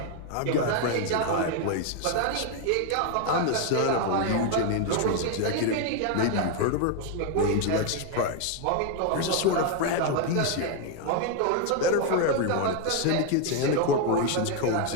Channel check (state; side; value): different; both; correlation 0.01